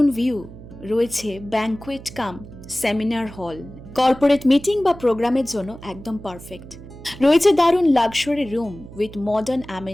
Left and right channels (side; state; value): right; noise; hum, 16 dB below the sound